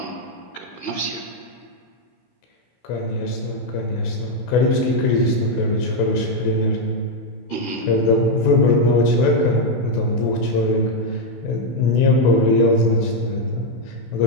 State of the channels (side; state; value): right; late; 16 ms